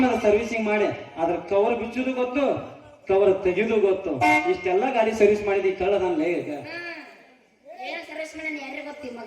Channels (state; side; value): identical; both; correlation 1.00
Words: ಸರ್ವಿಸಿಂಗ್ ಮಾಡಿ ಅದ್ರ ಕವರ್ ಬಿಚ್ಚುದು ಗೊತ್ತು ಕವರ್ ತೆಗೆದು ಗೊತ್ತು ಇಷ್ಟೆಲ್ಲ ಗಾಡಿ ಸರ್ವಿಸ್ ಮಾಡಿದಿ ಕಳ್ಳದನ್ಲೇ ಈಗ ಏನು ಸರ್ವಿಸ್ ಮಾಡಿ ಯಾರಿಗೆ ಗೊತ್ತಿ